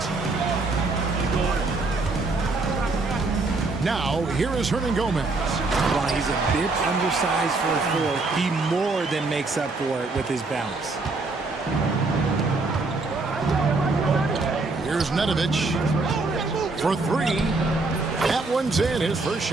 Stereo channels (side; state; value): left; quieter; 3.5 dB